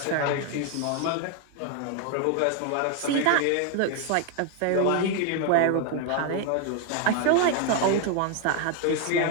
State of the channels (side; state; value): both; different; correlation 0.01